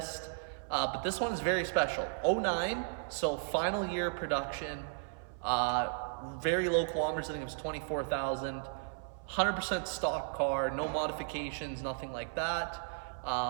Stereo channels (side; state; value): left; silent; 54 dB below the other